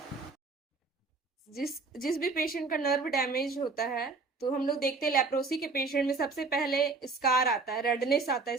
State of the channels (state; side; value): quieter; left; 4.1 dB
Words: जिस जिस भी पेशेंट का नर्व डैमेज होता है, तो हम लोग देखते हैं लेप्रोसी के पेशेंट में सबसे पहले स्कार आता है, रेडनेस आता है